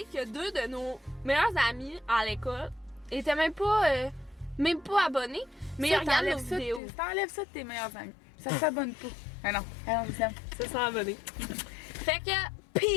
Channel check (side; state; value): right; drops out; at 6.8 s